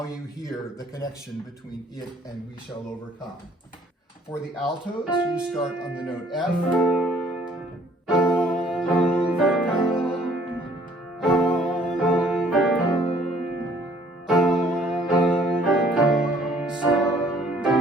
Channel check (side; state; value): both; normal; correlation 0.59